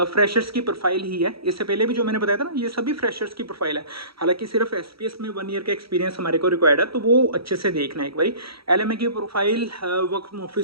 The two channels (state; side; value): late; left; 0.75 ms